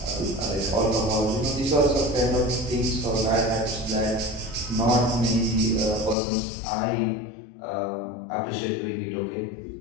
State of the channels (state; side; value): drops out; right; at 6.2 s